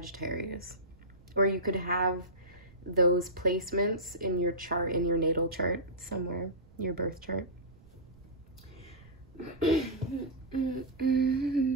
Or you could have those placements in your chart, in your natal chart somewhere, your birth chart.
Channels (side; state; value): right; noise; rumble, 24 dB below the sound